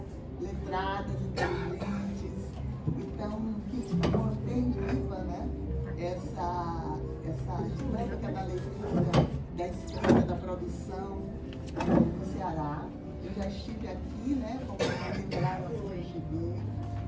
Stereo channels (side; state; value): both; identical; correlation 1.00